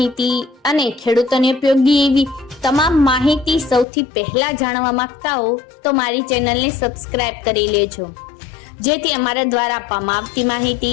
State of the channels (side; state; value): right; drops out; at 3.9 s